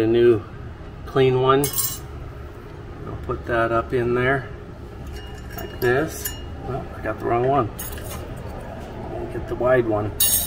new clean one. I'll put that up in there like this. Oh, I got the wrong one. I'll get the wide one.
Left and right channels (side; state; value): both; identical; correlation 1.00